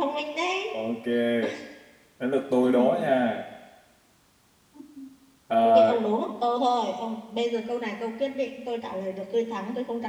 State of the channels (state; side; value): identical; both; correlation 1.00